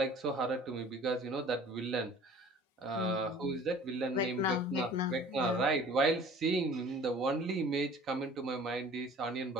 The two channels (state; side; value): normal; both; correlation 0.48